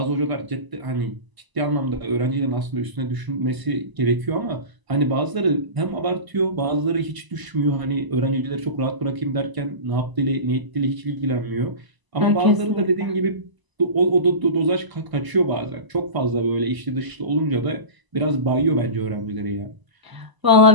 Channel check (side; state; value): left; late; 1.0 ms